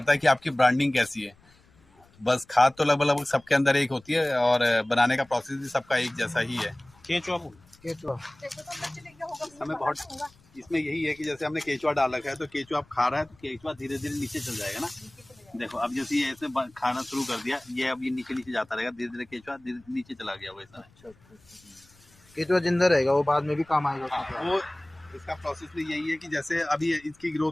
है कि आपकी ब्रांडिंग कैसी है। बस खाद तो लगभग सबके अंदर एक होती है और बनाने का प्रोसेस भी सबका एक जैसा ही है। केचुआ हमें बहुत इसमें यही है कि जैसे हमने केचुआ डाल रखा है तो केचुआ आप खा रहा है तो केचुआ धीरे धीरे नीचे चल जाएगा ना। देखो अब जैसे ये ऐसे खाना शुरू कर दिया, ये अब ये नीचे नीचे जाता रहेगा, धीरे धीरे केचुआ नीचे चला गया वैसा। केचुआ जिंदा रहेगा, वो बाद में भी काम आएगा। वो इसका प्रोसेस भी यही है कि जैसे अभी इसकी ग्रोथ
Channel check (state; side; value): noise; left; rumble, 29 dB below the sound